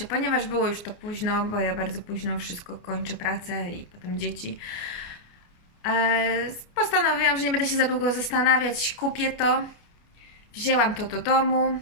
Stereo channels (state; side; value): late; right; 29 ms